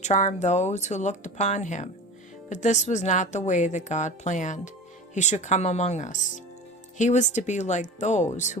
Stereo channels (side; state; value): both; normal; correlation 0.32